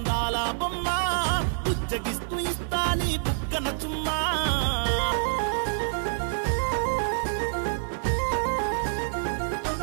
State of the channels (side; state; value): left; silent; digital silence